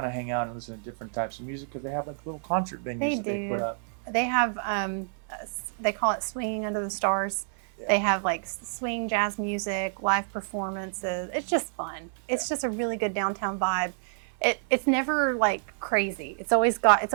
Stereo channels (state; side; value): silent; left; 56 dB below the other